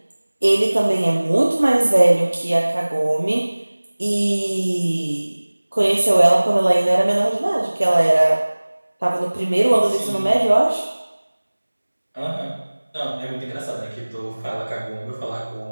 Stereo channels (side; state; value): both; inverted; correlation -1.00